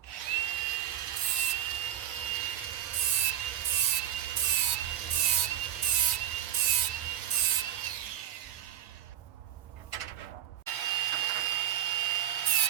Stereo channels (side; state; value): left; quieter; 11.2 dB